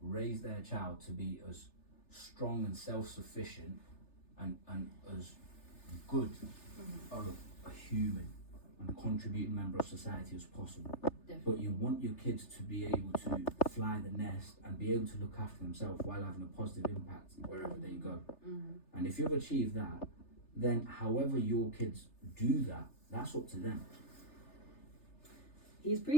raise their child to be as strong and self-sufficient and as good of a human and contributing member of society as possible. Definitely. But you want your kids to be able to fly the nest and be able to look after themselves while having a positive impact wherever they go. And if you've achieved that, then however your kids do that, that's up to them. He's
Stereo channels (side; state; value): right; late; 3.3 ms